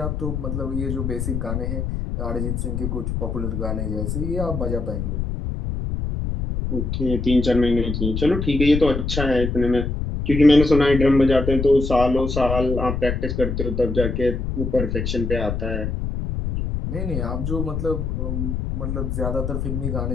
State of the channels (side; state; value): left; noise; rumble, 2 dB below the sound